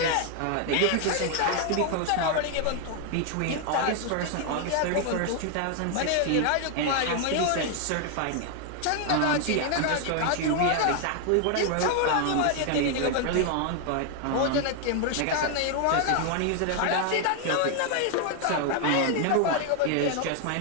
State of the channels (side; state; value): both; different; correlation 0.00